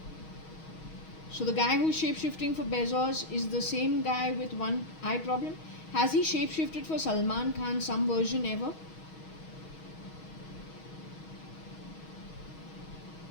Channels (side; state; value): right; late; 6.3 ms